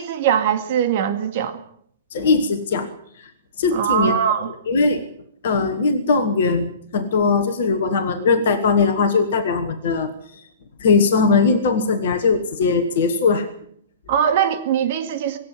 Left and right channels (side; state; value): both; inverted; correlation -0.41